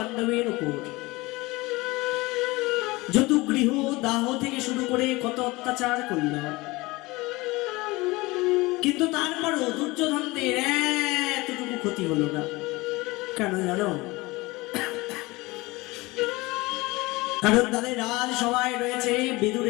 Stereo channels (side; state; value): right; quieter; 22.2 dB